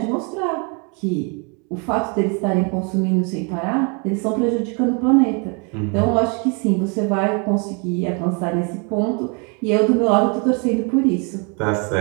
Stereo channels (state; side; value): quieter; left; 34.5 dB